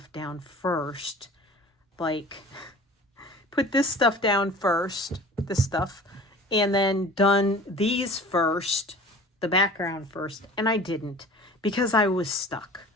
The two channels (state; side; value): normal; both; correlation 0.42